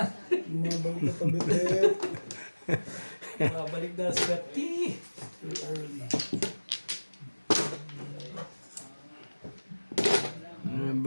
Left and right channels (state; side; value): inverted; both; correlation -1.00